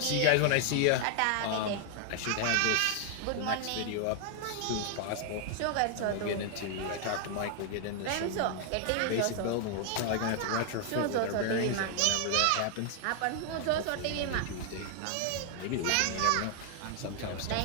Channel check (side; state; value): both; different; correlation 0.00